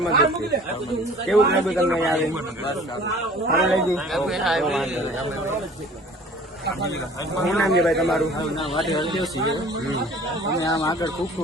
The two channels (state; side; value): normal; both; correlation 0.48